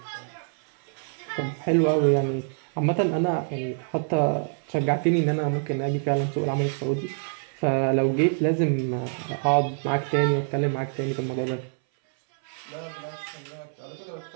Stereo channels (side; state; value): left; silent; 60 dB below the other